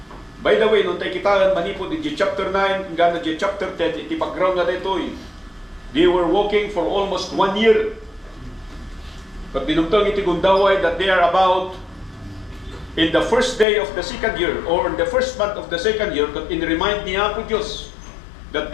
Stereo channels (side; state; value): right; drops out; at 13.7 s